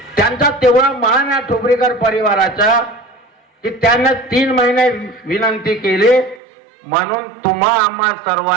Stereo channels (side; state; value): left; drops out; at 6.4 s